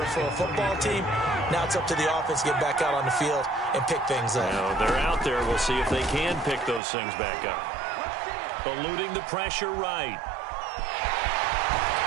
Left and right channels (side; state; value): left; drops out; at 6.8 s